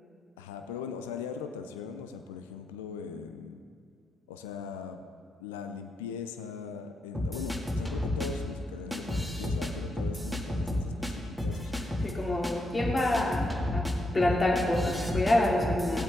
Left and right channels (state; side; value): normal; both; correlation 0.82